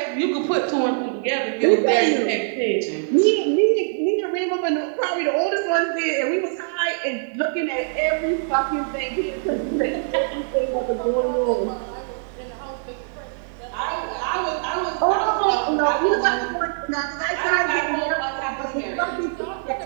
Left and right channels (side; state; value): left; silent; digital silence